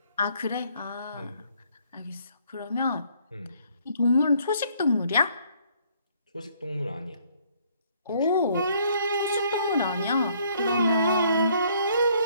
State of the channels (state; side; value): inverted; both; correlation -0.65